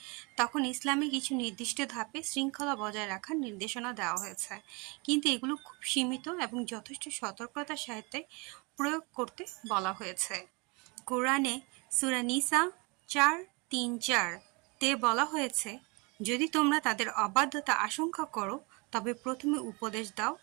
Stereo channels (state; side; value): quieter; left; 29.2 dB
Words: তখন ইসলামে কিছু নির্দিষ্ট ধাপে শৃঙ্খলা বজায় রাখার নির্দেশনা দেওয়া হয়েছে। কিন্তু এগুলো খুব সীমিত এবং যথেষ্ট সতর্কতার সাথে প্রয়োগ করতে বলা হয়েছে। কোরআনে সূরা নিসা ৪-৩-৪ তে বলা হয়েছে, যদি তোমরা তাদের অবাধ্যতা আশঙ্কা করো তবে প্রথমে উপদেশ দাও,